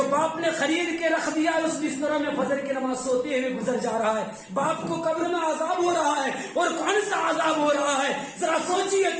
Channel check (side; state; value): both; identical; correlation 1.00